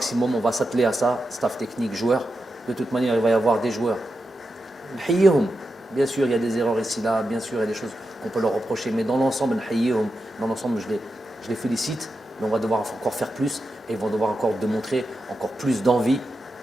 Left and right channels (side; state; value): both; normal; correlation 0.89